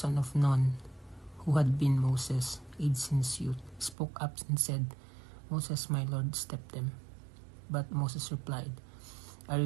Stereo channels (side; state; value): left; drops out; at 4.0 s